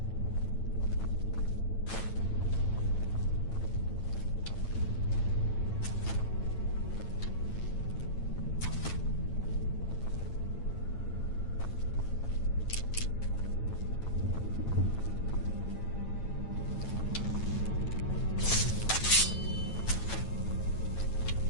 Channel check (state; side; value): late; right; 9.0 ms